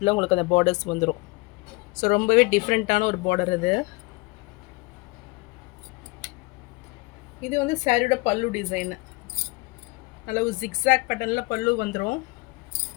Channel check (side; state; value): right; quieter; 25.8 dB